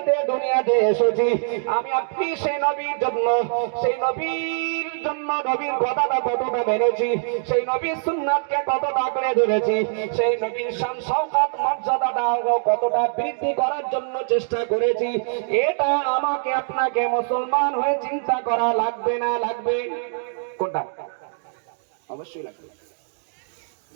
দুনিয়াতে এসেছি, আমি আপনি সেই নবীর জন্য, নবীর কথাটা কতটা মেনেছি, সেই নবীর সুন্নাতকে কতটা আঁকড়ে ধরেছি, সেই নবীর শান শওকত মর্যাদাটা কতটা বৃদ্ধি করার জন্য চেষ্টা করেছি, এটা আমাকে আপনাকে মুসলমান হয়ে চিন্তা করা লাগবে না লাগবে? কোনটা? অবশ্যই লাগবে।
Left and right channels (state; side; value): silent; left; digital silence